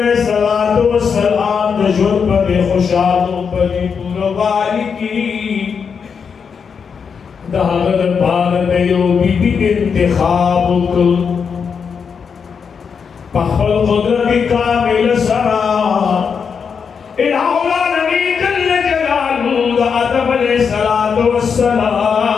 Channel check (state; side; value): quieter; right; 6.3 dB